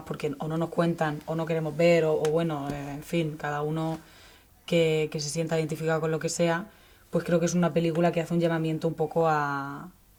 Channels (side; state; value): both; identical; correlation 1.00